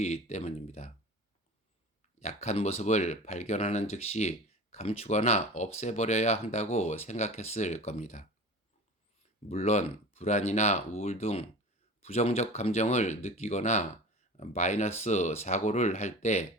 때문입니다. 약한 모습을 발견하는 즉시 감추거나 없애버려야 한다고 생각했을 겁니다. 물론 불안이나 우울 등 부정적 감정을 느끼거나 마이너스 사고를 할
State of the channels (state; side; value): normal; both; correlation 0.35